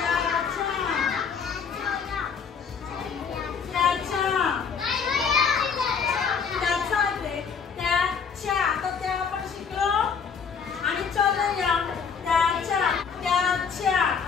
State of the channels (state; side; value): quieter; right; 6.3 dB